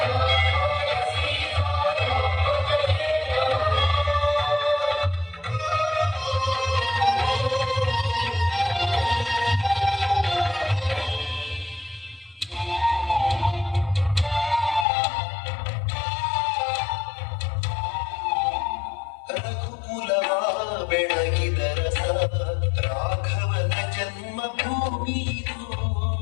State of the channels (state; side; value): drops out; right; at 14.9 s